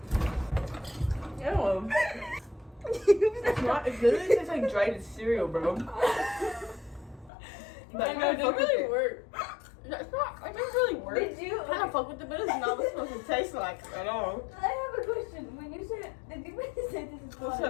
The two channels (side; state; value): right; drops out; at 7.3 s